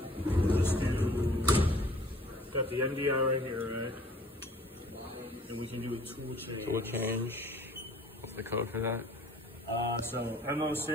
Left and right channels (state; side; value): normal; both; correlation 0.54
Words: Got the MDI right here, right? And we can do a tool change. Tool change. What's the code for that? So